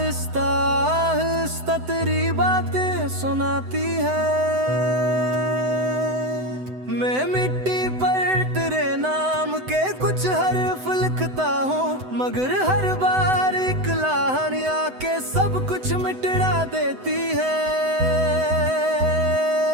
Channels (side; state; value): left; late; 7.9 ms